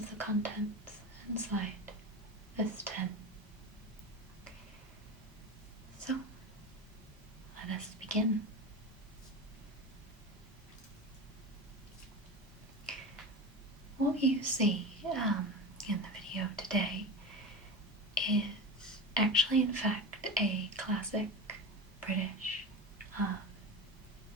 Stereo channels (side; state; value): both; normal; correlation 0.25